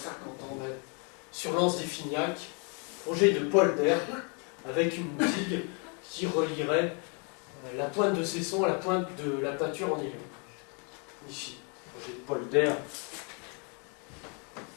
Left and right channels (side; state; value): right; quieter; 36.4 dB